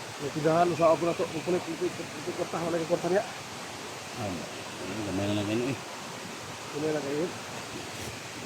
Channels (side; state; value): both; identical; correlation 1.00